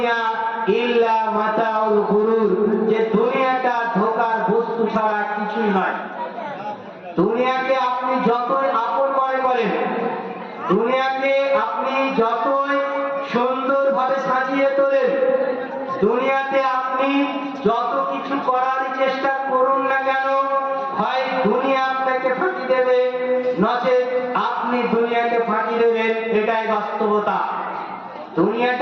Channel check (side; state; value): both; identical; correlation 1.00